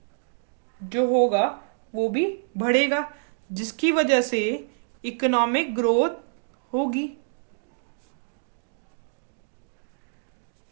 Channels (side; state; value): left; silent; digital silence